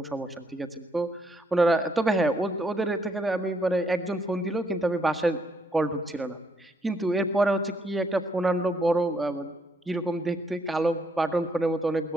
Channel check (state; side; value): normal; both; correlation 0.72